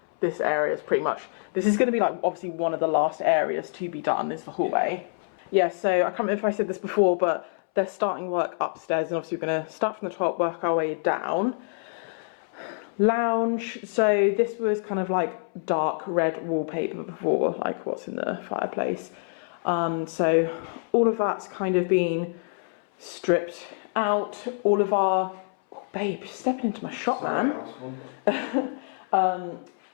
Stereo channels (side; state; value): right; silent; 61 dB below the other